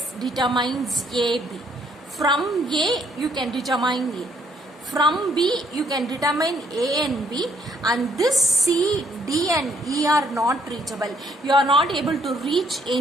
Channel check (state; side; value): normal; both; correlation 0.68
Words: determines AB. From A, you can determine A. From B, you can determine A and B, and this C, D and E are not reachable. You are not able to reach